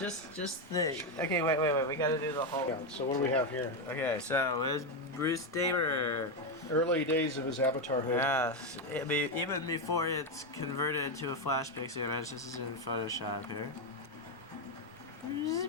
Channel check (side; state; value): both; normal; correlation 0.07